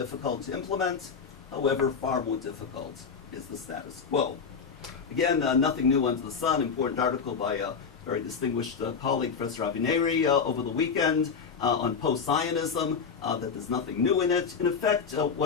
to implement. However, far more difficult is the status quo. Again, nothing new under the sun. Important article by a very distinguished colleague, Professor Avineri, over the weekend on post-Zionism, that there's nothing new in it. In effect,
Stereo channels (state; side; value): quieter; right; 5.9 dB